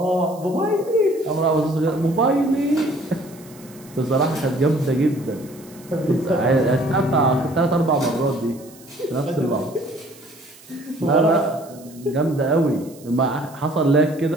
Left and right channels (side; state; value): right; noise; hiss, 23 dB below the sound